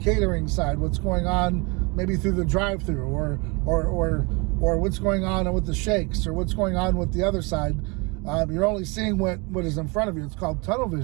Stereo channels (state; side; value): quieter; left; 28.8 dB